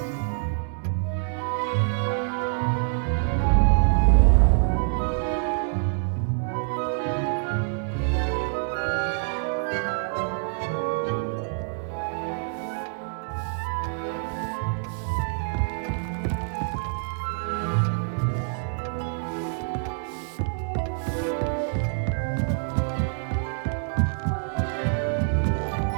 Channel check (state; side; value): silent; left; digital silence